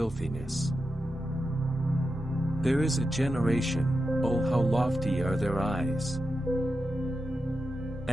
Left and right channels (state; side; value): normal; both; correlation 0.89